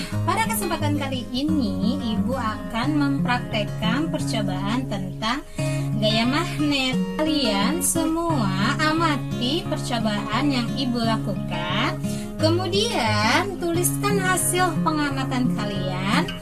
pada kesempatan kali ini Ibu akan mempraktekkan percobaan tentang gaya magnet. Kalian semua amati percobaan yang Ibu lakukan. Kemudian tuliskan hasil pengamatan kalian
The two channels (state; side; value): identical; both; correlation 1.00